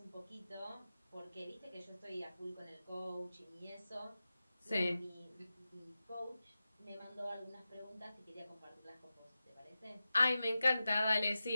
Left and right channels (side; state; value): both; inverted; correlation -0.94